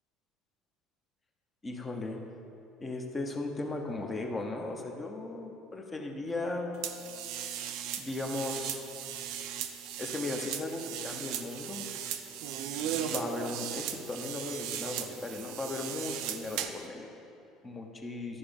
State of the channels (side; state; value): both; normal; correlation 0.53